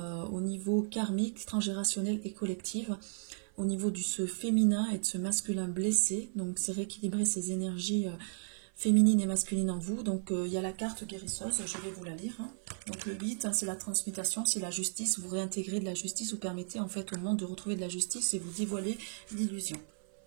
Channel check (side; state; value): left; silent; 55 dB below the other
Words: au niveau karmique, transgénérationnel et collectif, au niveau du ce féminin et de ce masculin blessé. Donc c'est rééquilibrer ces énergies féminines et masculines en vous. Donc il y a la carte guérisseuse, je vais vous la lire. Donc le 8, c'est la transmutation, c'est la justice, vous réintégrez de la justice, vous permettez en fait au monde de retrouver de la justice et vous dévoilez l'illusion.